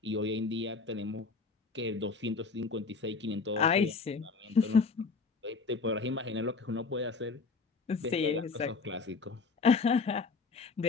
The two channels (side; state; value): right; quieter; 4.4 dB